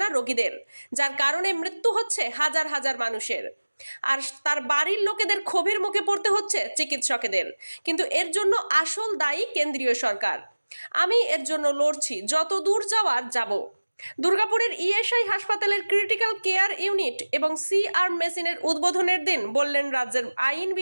রোগীদের, যার কারণে মৃত্যু হচ্ছে হাজার হাজার মানুষের। আর তার বাড়ির লোকেদের ক্ষোভের মুখে পড়তে হচ্ছে চিকিৎসকেদের। কিন্তু এর জন্য আসল দায়ী কেন্দ্রীয় সরকার। আমি এর জন্য লড়ছি, যত দূর যাওয়ার যাব। দুর্গাপুরের ইএসআই হাসপাতালের ক্রিটিক্যাল কেয়ার ইউনিট এবং সিআর মেশিনের উদ্বোধনের দিন বললেন রাজ্যের আইন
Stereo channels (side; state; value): both; inverted; correlation -1.00